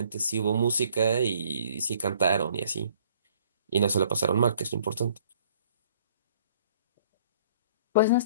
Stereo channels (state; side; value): inverted; both; correlation -0.59